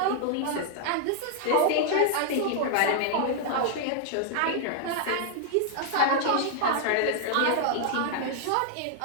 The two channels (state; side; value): different; both; correlation -0.01